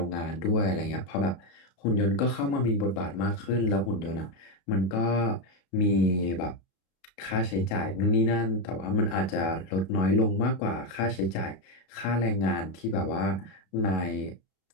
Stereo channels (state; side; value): late; right; 32 ms